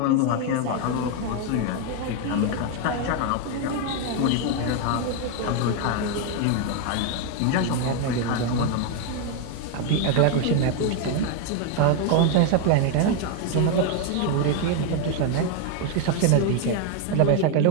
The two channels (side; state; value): both; different; correlation 0.01